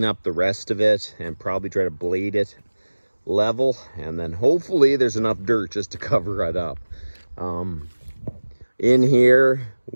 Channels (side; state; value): both; inverted; correlation -1.00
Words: up the rest of it and probably try to blade it level, and then hopefully there's enough dirt just to cover it up. In here